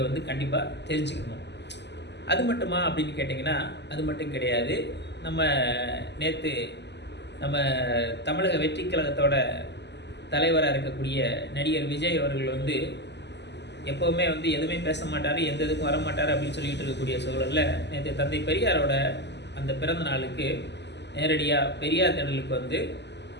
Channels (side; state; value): right; late; 0.50 ms